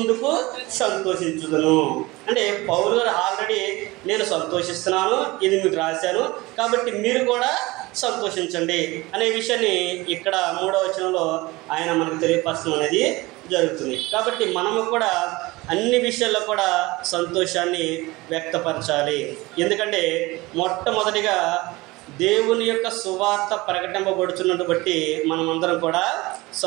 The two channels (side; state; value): left; quieter; 21.5 dB